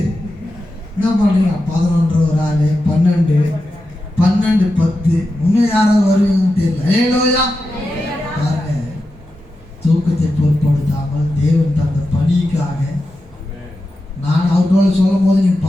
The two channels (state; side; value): normal; both; correlation 0.90